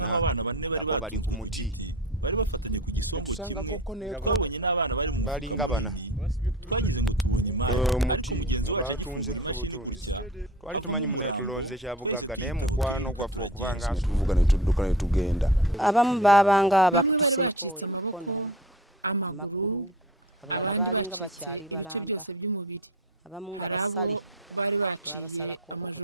abana bane bari batunzwe ku giti bari bafatanye ku gisongo kimwe. Twabonye n'abana bari mu mufuka munini, twagize ngo tubonye imari, ariko mugenzi wacu agifungura imashini gutya havamo umurambo, twese tuyitaho turiruka turagenda. Bamwe bari bacitse amaboko, amaguru, abandi bacitse ibice byose by'umubiri, hari abo bari baciye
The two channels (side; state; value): both; normal; correlation 0.35